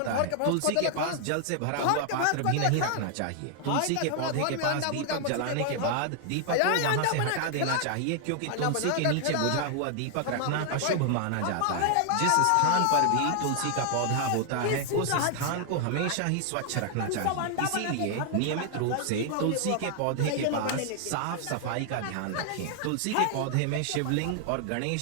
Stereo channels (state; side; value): different; both; correlation 0.00